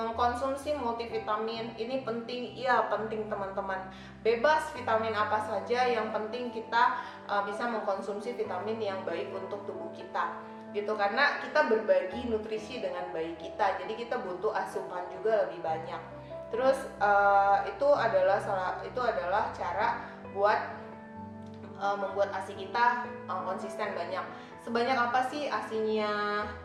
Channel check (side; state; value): both; identical; correlation 1.00